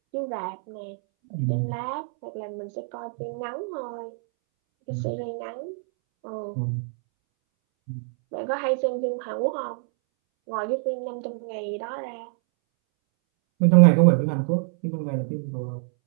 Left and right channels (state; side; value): silent; left; 61 dB below the other